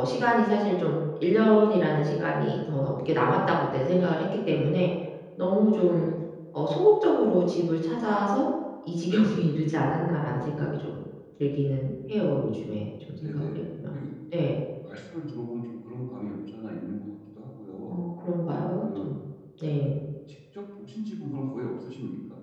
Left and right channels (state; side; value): identical; both; correlation 1.00